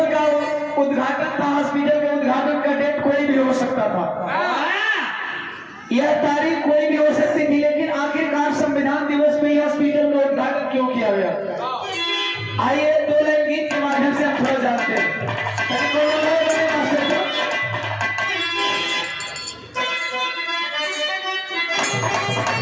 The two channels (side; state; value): both; identical; correlation 1.00